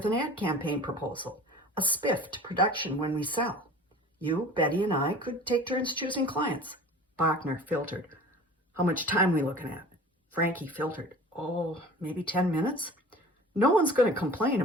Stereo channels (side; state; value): both; normal; correlation 0.42